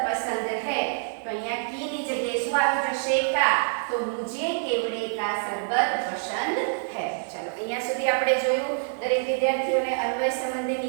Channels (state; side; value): silent; left; 55 dB below the other